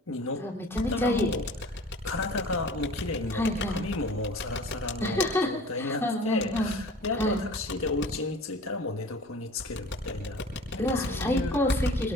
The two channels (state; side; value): normal; both; correlation 0.44